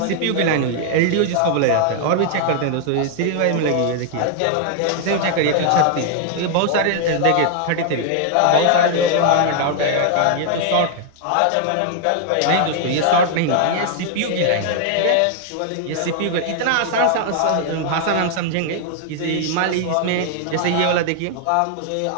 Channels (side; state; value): both; different; correlation 0.00